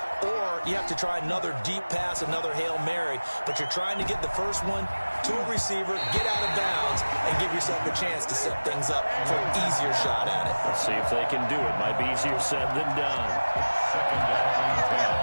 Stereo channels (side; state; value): both; inverted; correlation -1.00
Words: or you have to try another deep pass, another Hail Mary. But you're trying to get the first one to a receiver, get out of bounds, and give yourself a chance to set things up for an easier shot at it. Let's see if they can do it. Might be easier said than done. 2nd down and